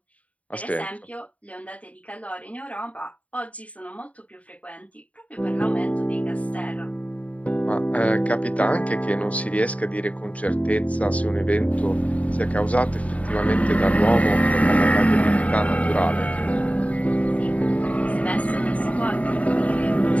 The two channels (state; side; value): late; right; 0.068 ms